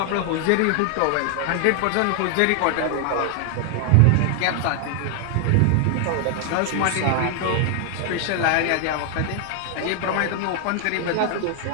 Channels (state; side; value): different; both; correlation 0.00